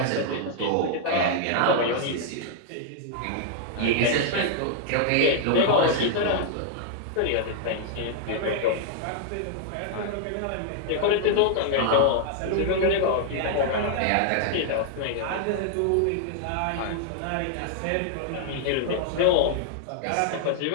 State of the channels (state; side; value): different; both; correlation 0.00